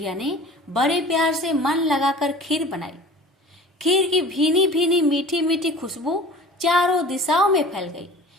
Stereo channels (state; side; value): normal; both; correlation 0.42